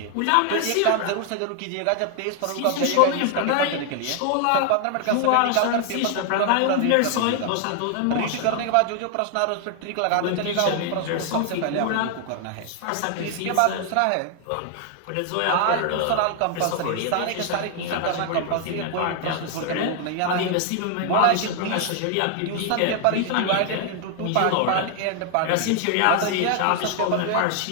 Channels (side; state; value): both; different; correlation 0.00